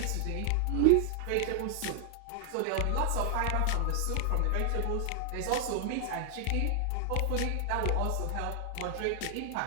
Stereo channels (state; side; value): different; both; correlation 0.00